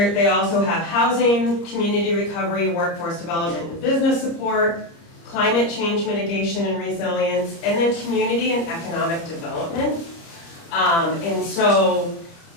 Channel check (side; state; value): right; late; 30 ms